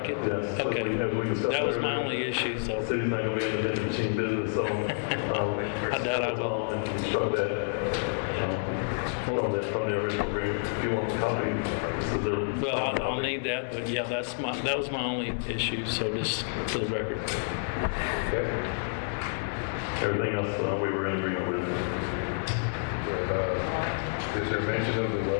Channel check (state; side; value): silent; right; 59 dB below the other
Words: it? Yes. Okay. As we discussed That was my earlier, only issue, so the city's not going to be in the vending machine business, so I doubt I will. and we struck that from the original agreement. If you want a copy, this is the. Well, I'll need that, but yeah, that was my only issue, so just for the record. Okay. Everything else we were in agreement with. Is there mention of the